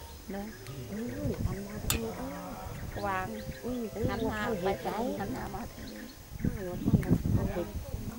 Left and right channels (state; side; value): identical; both; correlation 1.00